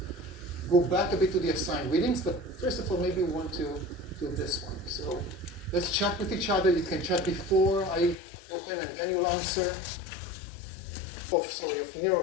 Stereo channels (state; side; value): drops out; right; at 8.2 s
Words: go back a bit to the assigned readings, but first of all, maybe we want to do this one. So let's chat with each other. You can chat before I open, and then you'll answer. Of